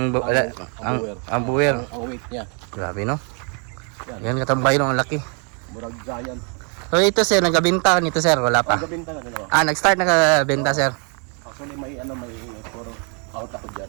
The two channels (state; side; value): quieter; left; 37.9 dB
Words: buwer. Ang weight niya. Grabe, no? Yan. Yan katambay no, ang laki. Murag giant. So ito sir, nagabenta nito sir, wala pa. Gabinta na din ako. Nag-start nakabenta sir. Actually may for out ako